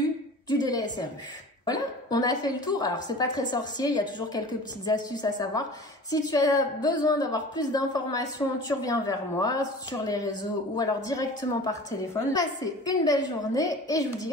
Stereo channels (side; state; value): both; normal; correlation 0.40